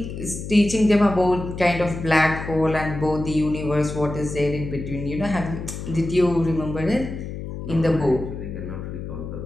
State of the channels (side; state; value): left; noise; hum, 8 dB below the sound